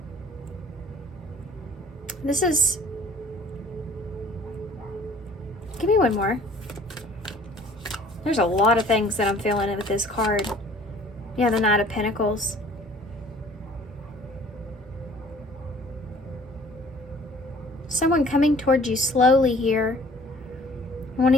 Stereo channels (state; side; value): normal; both; correlation 0.52